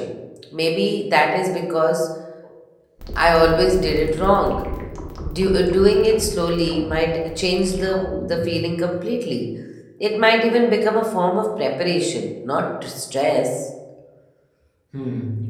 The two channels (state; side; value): identical; both; correlation 1.00